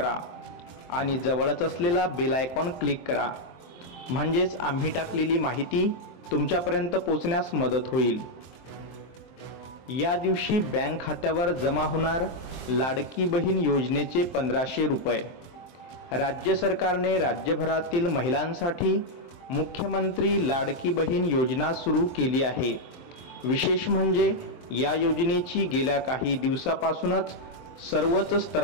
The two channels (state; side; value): late; right; 23 ms